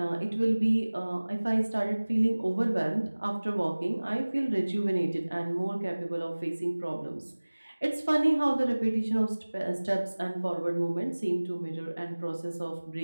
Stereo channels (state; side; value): inverted; both; correlation -1.00